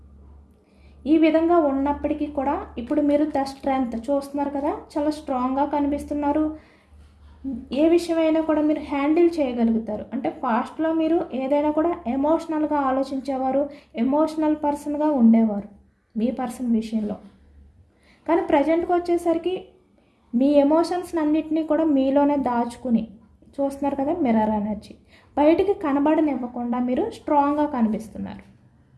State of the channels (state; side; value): identical; both; correlation 1.00